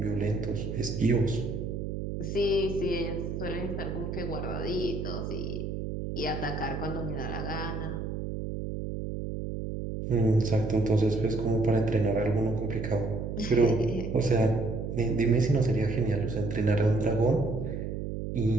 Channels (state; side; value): noise; right; hum, 4 dB below the sound